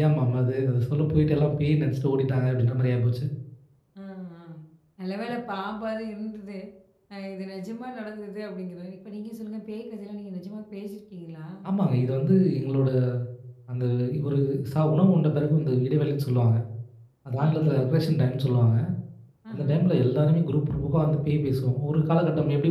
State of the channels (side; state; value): both; identical; correlation 1.00